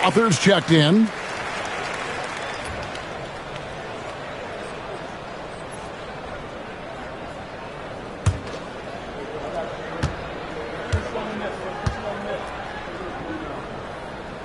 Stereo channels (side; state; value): both; identical; correlation 1.00